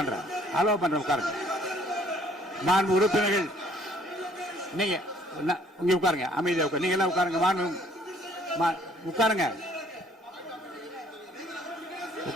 உட்காருங்க. மாண்பு உறுப்பினர்கள் நீங்க இங்க உட்காருங்க, அமைதியா உட்காரு. நீங்க எல்லாம் உட்காருங்க.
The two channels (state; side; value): normal; both; correlation 0.60